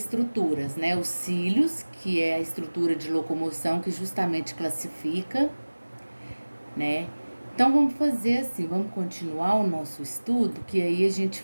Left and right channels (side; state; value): both; inverted; correlation -1.00